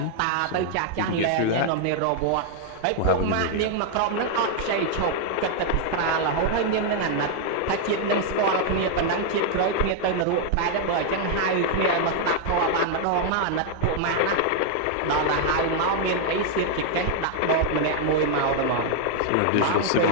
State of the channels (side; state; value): both; different; correlation 0.00